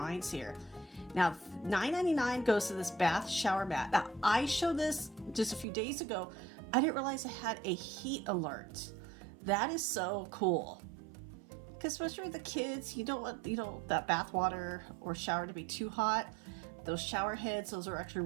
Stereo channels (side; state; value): left; drops out; at 5.7 s